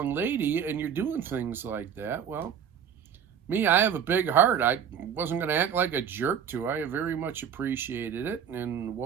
lady and you're doing things like that, well, I have a big heart. I wasn't going to act like a jerk to her. I very much appreciated it. And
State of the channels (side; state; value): left; quieter; 8.1 dB